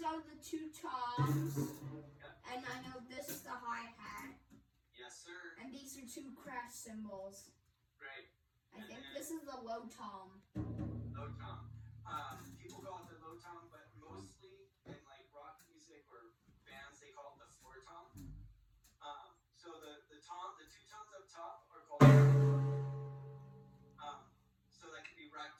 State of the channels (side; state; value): both; identical; correlation 1.00